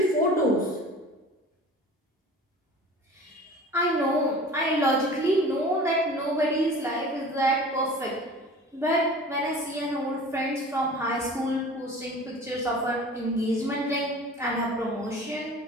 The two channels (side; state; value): both; normal; correlation 0.41